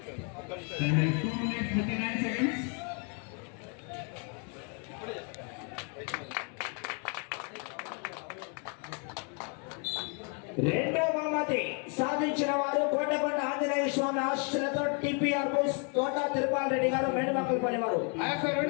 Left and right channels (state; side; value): quieter; right; 37.8 dB